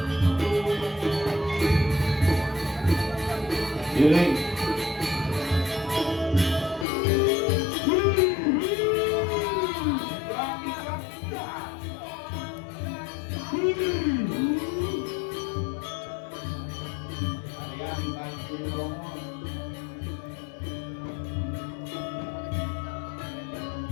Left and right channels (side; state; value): right; drops out; at 6.9 s